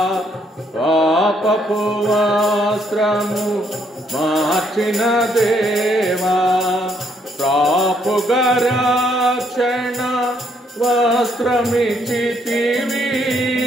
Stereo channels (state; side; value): normal; both; correlation 0.71